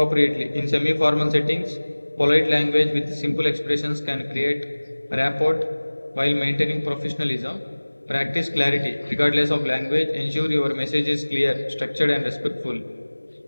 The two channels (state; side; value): inverted; both; correlation -1.00